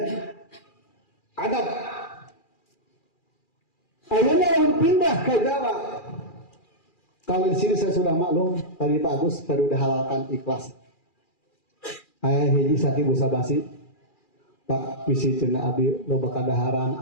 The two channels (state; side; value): late; right; 2.4 ms